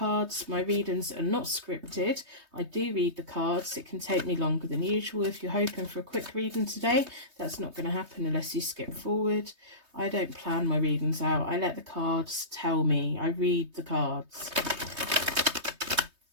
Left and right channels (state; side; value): late; left; 3.2 ms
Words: My readings are not scripted. I do read the cards. It can take me longer than usual. If you're hoping for a quick reading today, that's not going to happen unless you skip forward. I don't plan my readings out. I let the cards tell me. I read the cards.